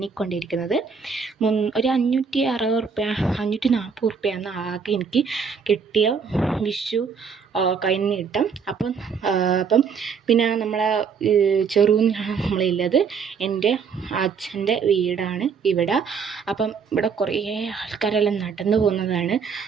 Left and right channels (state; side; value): quieter; left; 5.9 dB